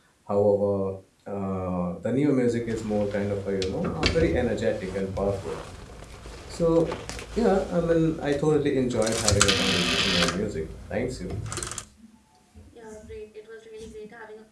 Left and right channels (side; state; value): both; identical; correlation 1.00